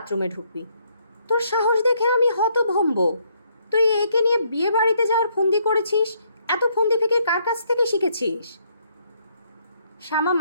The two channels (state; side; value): inverted; both; correlation -0.71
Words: ঢুকবি। তোর সাহস দেখে আমি হতভম্ব। তুই একে নিয়ে বিয়ে বাড়িতে যাওয়ার ফন্দি করেছিস? এত ফন্দি থেকে কার কাছ থেকে শিখেছিস? শ্যামা